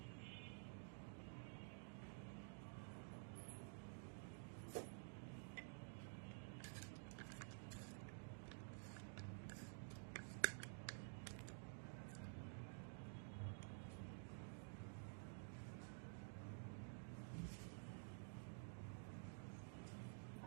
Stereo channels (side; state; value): left; silent; digital silence